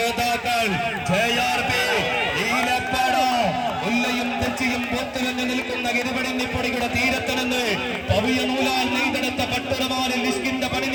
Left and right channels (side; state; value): both; identical; correlation 1.00